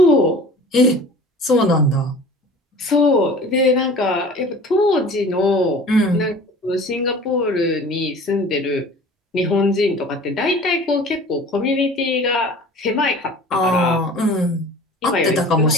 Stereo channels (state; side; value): normal; both; correlation 0.43